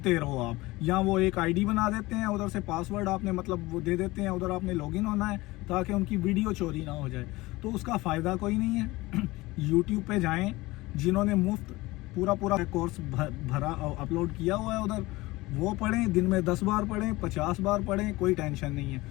रहो आप। या वो एक आईडी बना देते हैं, उधर से पासवर्ड आपने मतलब वो दे देते हैं, उधर आपने लॉगिन होना है ताकि उनकी वीडियो चोरी ना हो जाए। तो उसका फ़ायदा कोई नहीं है। यूट्यूब पे जाएं, जिन्होंने मुफ्त पूरा कोर्स भरा अपलोड किया हुआ है उधर, वो पढ़ें, दिन में 10 बार पढ़ें, 50 बार पढ़ें, कोई टेंशन नहीं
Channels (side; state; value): right; quieter; 20.5 dB